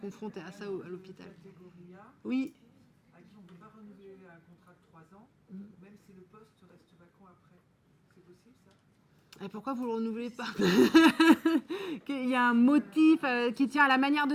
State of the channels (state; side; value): identical; both; correlation 1.00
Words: à ça à l'hôpital. Catégorie A, Oui. à qui on ne peut pas renouveler un contrat de 3 ans, même si le poste reste vacant après. C'est possible ça? Et pourquoi vous ne le renouvelez pas? Qu'il y a un motif qui tient à la manière